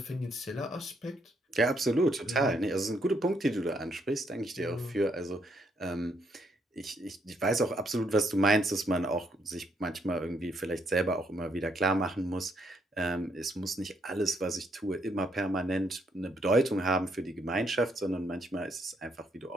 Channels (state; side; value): normal; both; correlation 0.74